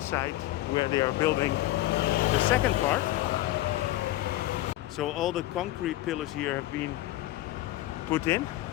where they are building the second part. So all the concrete pillars here have been put in.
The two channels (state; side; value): quieter; right; 16.0 dB